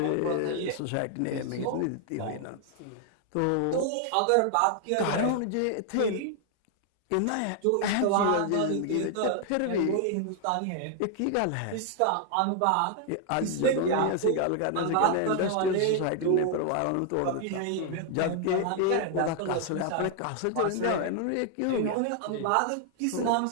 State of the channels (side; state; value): both; different; correlation 0.00